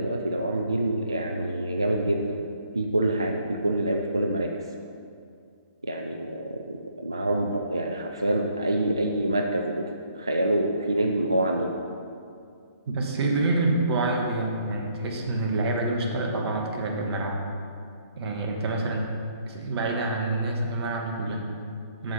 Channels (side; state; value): both; inverted; correlation -0.68